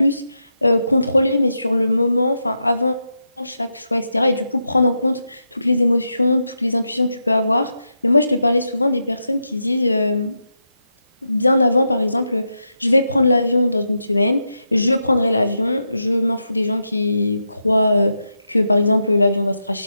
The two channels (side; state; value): both; inverted; correlation -0.87